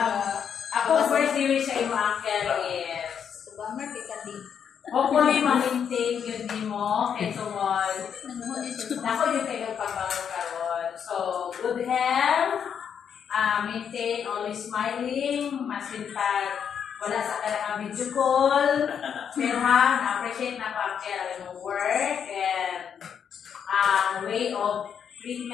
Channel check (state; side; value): quieter; right; 7.7 dB